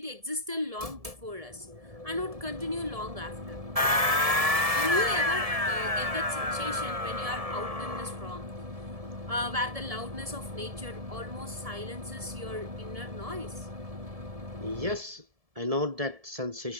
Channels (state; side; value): late; left; 1.7 ms